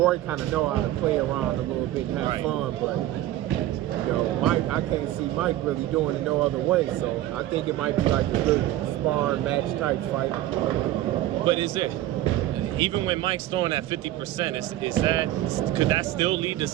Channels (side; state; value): left; quieter; 14.2 dB